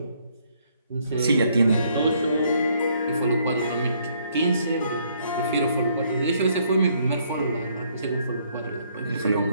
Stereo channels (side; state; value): both; inverted; correlation -0.68